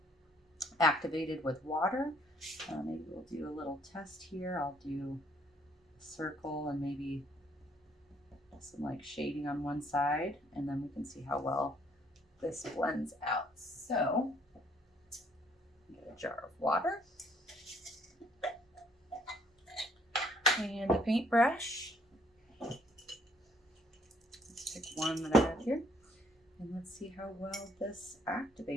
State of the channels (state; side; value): normal; both; correlation 0.64